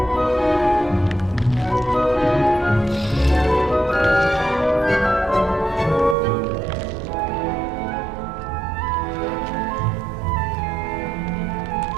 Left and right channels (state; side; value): drops out; left; at 6.2 s